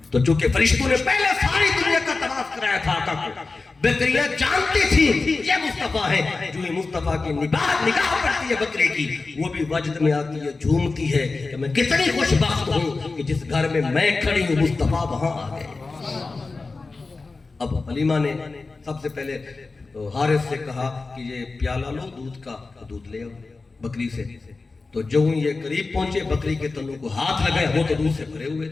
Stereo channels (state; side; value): quieter; right; 3.8 dB